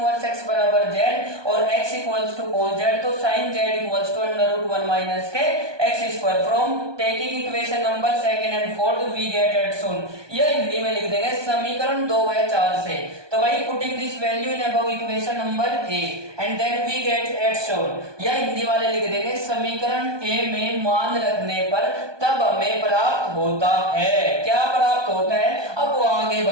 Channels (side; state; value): left; late; 1.2 ms